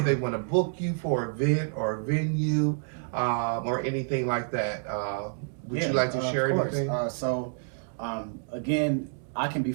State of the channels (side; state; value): left; silent; 59 dB below the other